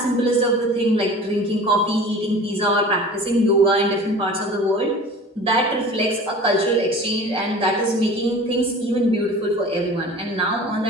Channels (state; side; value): normal; both; correlation 0.40